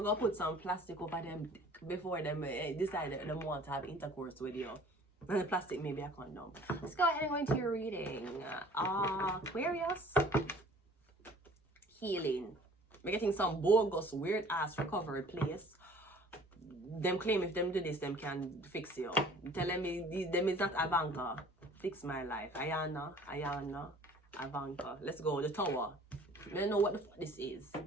go put some plastic over them before them decide that they want to have intercourse with you. And the plastic may be a condom. Let's go ahead and go into your reading. Aquarius. Healing. We're getting some bogus, weird ass recovery place. Them claim if them do this, them can fix you. Tell them them is not Ivanka. Fix my life. Ayana, Ivanka. Let's go. The Tower. I don't know what the fuck this is.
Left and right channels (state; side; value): normal; both; correlation 0.51